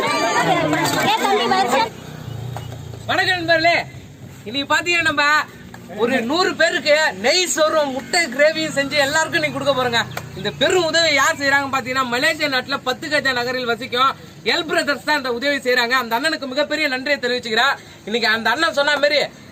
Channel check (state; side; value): identical; both; correlation 1.00